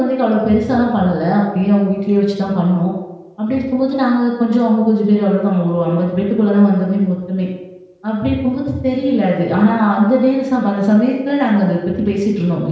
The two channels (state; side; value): identical; both; correlation 1.00